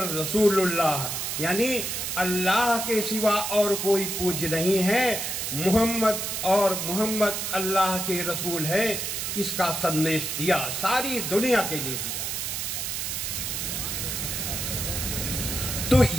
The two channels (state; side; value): noise; right; hiss, 3 dB below the sound